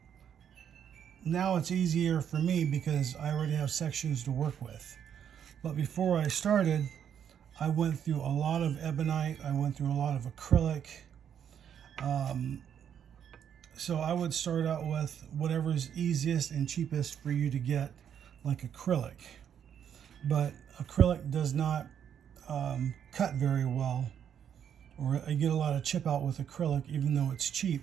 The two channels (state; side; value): quieter; left; 8.7 dB